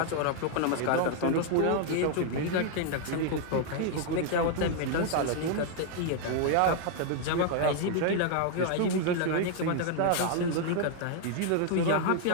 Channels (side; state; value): both; different; correlation 0.00